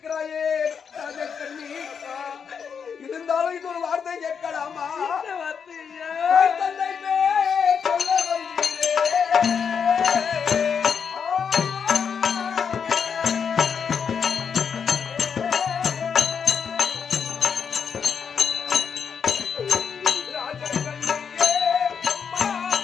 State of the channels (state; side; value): quieter; right; 6.7 dB